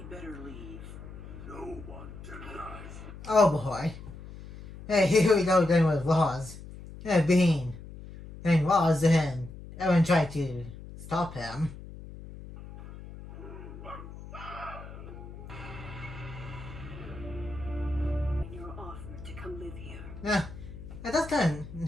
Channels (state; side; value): noise; left; hum, 14 dB below the sound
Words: better leave. No one denies. Oh boy. Hey, here we go again with Roz. Being Roz and everyone tried to stop him. And you're offered to come live here. That's kind